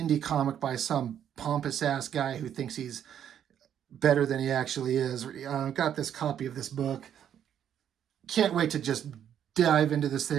comic by some pompous ass guy who thinks he's better than he actually is. Got this copy of this book. Can't wait to just dive into this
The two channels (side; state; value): left; quieter; 9.5 dB